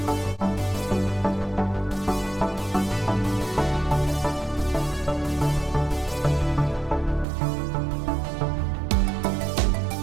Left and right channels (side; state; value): left; drops out; at 7.2 s